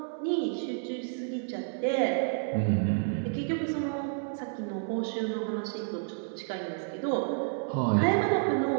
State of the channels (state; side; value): silent; left; 58 dB below the other